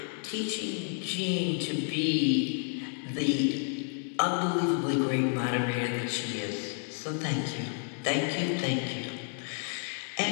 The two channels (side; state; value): right; silent; 56 dB below the other